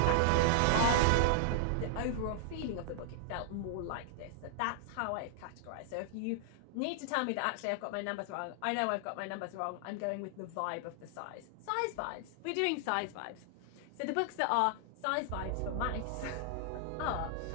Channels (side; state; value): both; different; correlation 0.00